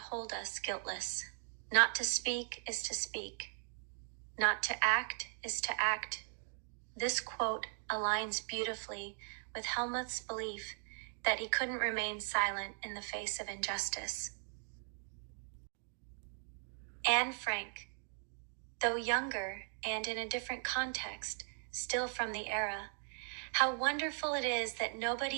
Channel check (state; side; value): silent; left; 52 dB below the other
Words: us guiltless. Not to speak is to speak. Not to act is to act. This quote aligns beautifully with Helmuth's belief that he couldn't remain silent in the face of injustice. Anne Frank, though younger and in a different context, still from the era, how wonderful it is that